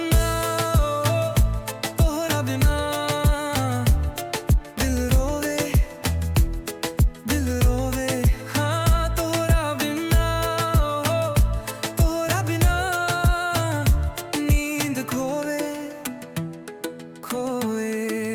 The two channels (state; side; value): identical; both; correlation 1.00